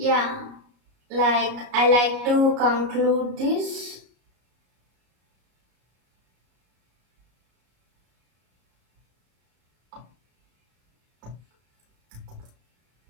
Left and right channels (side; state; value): left; late; 33 ms